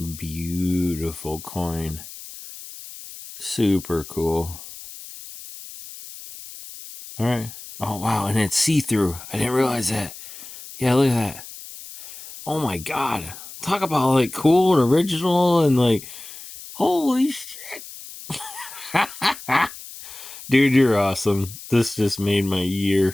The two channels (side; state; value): left; noise; hiss, 14 dB below the sound